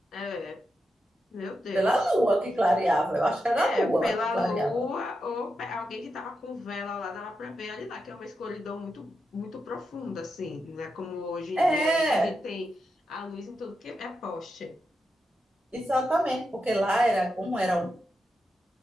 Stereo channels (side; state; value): both; normal; correlation 0.87